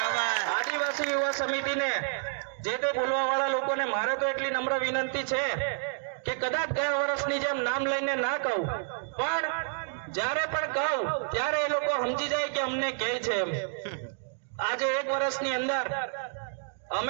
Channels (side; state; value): left; silent; digital silence